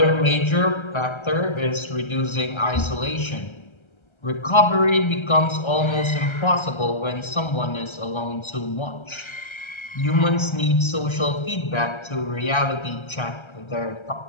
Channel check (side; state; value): right; late; 1.3 ms